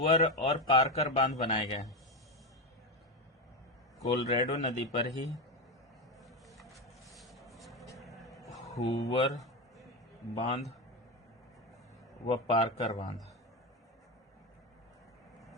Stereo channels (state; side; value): normal; both; correlation 0.13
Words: और पार्कर बांध बनाए गए हैं। कोलोराडो नदी पर ही हूवर बांध व पार्कर बांध